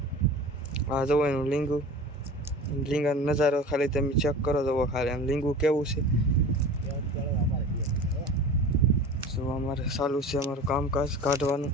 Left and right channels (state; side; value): normal; both; correlation 0.37